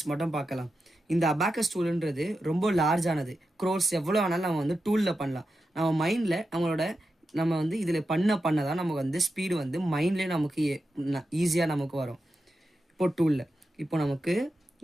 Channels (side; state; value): both; normal; correlation 0.90